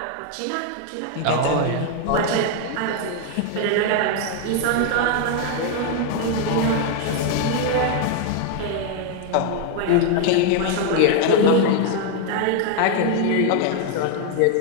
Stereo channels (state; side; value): different; both; correlation 0.01